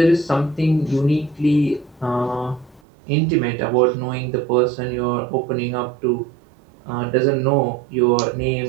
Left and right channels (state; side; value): drops out; left; at 2.8 s